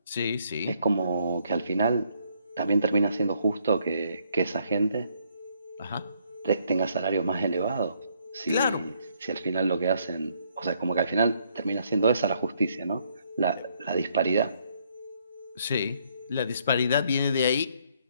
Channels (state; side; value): inverted; both; correlation -0.69